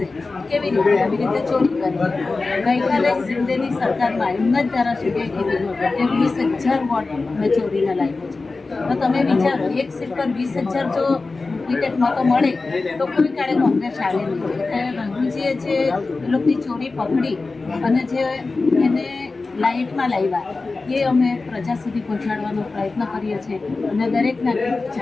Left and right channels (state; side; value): quieter; right; 3.7 dB